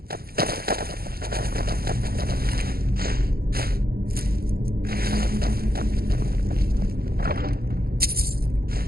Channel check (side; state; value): left; late; 0.44 ms